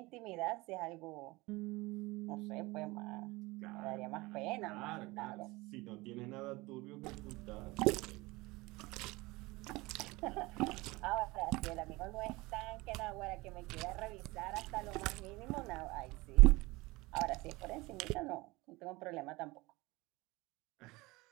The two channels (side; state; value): left; quieter; 22.3 dB